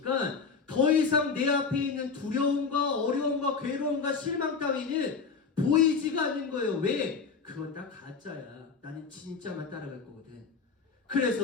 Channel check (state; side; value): quieter; right; 5.2 dB